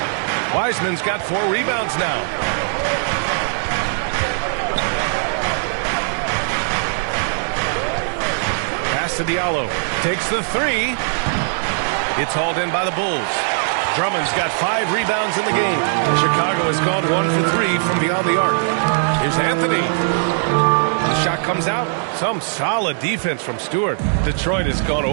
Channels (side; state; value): left; silent; digital silence